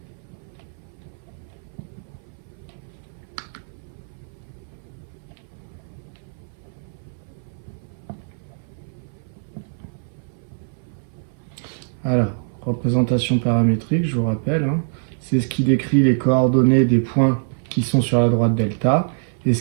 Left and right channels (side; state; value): left; silent; 58 dB below the other